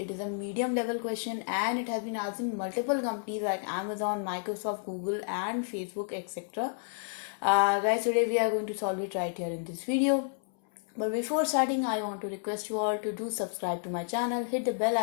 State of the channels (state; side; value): silent; right; 57 dB below the other